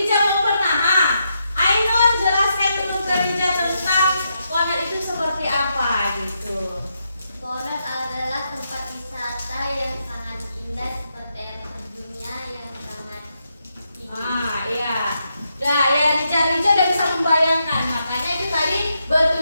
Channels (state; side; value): inverted; both; correlation -0.82